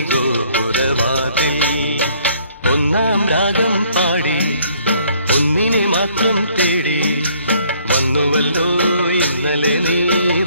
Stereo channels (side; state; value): both; inverted; correlation -0.62